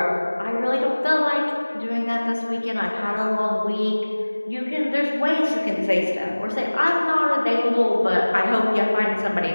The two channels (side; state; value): both; inverted; correlation -1.00